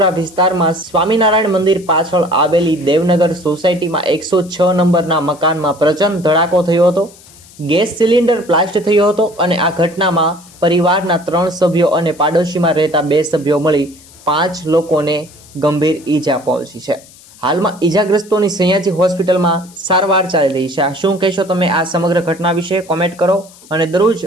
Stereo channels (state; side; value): noise; left; hiss, 23 dB below the sound